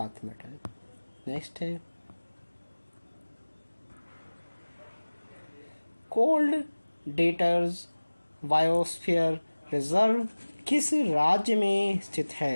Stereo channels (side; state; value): both; inverted; correlation -1.00